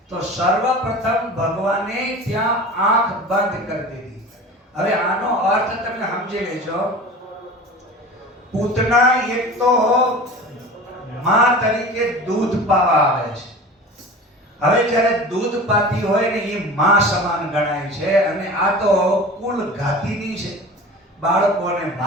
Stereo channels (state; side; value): normal; both; correlation 0.36